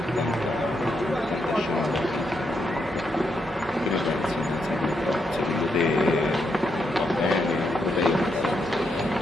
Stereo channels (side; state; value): both; normal; correlation 0.80